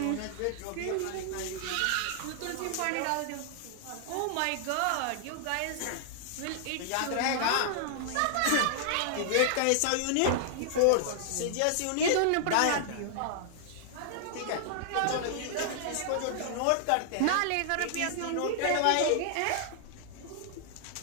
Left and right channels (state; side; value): different; both; correlation -0.01